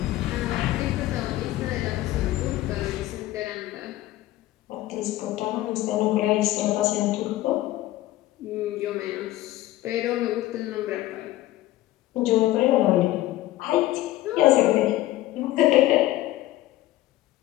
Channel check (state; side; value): quieter; right; 15.7 dB